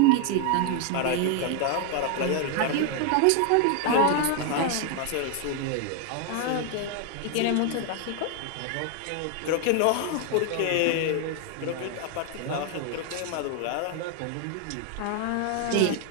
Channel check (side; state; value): both; different; correlation 0.00